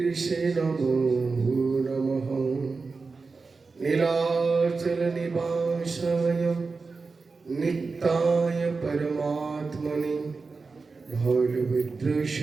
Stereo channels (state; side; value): quieter; left; 4.3 dB